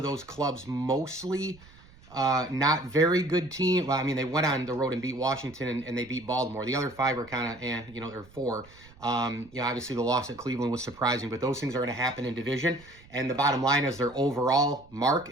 those clubs mostly not very good team. Well, I mean, they went on the road and beat Washington and they beat Baltimore. The other 5 are kind of, or 4. Obviously the loss at Cleveland was surprising, but those things are going to happen in division. And the bottom line is their overall mark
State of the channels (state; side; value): noise; right; rumble, 24 dB below the sound